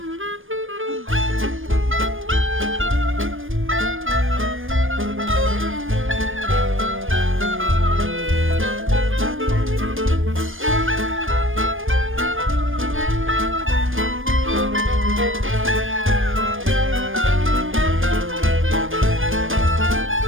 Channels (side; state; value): left; late; 0.59 ms